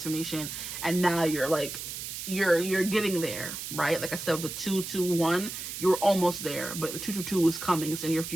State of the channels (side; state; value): right; noise; hiss, 7 dB below the sound